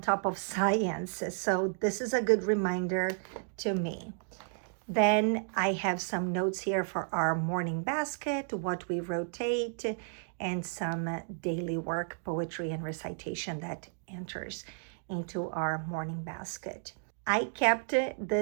of science. So this is a good reminder to me. Then I have some notes here for our morning basket, what we rotate, and some daily work, poetry, and recitation that enters into our morning basket. I kept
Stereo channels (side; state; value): left; silent; digital silence